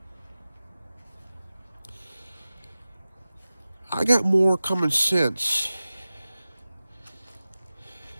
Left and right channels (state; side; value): inverted; both; correlation -0.96